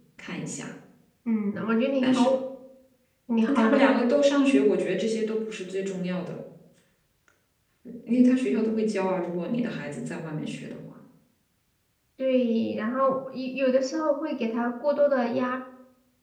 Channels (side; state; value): both; identical; correlation 1.00